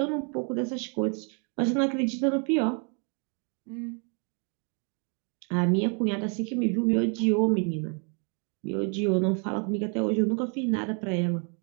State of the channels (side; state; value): left; quieter; 38.5 dB